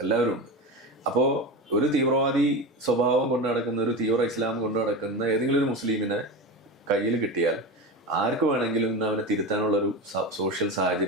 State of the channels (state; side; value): normal; both; correlation 0.24